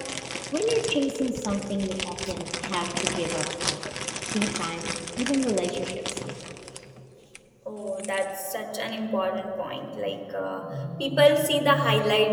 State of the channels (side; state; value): both; identical; correlation 1.00